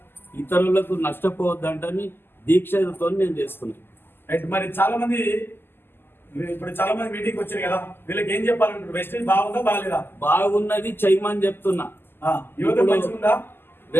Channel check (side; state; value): right; late; 0.10 ms